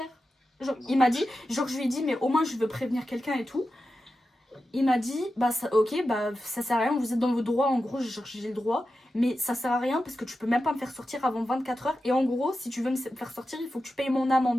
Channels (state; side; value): normal; both; correlation 0.91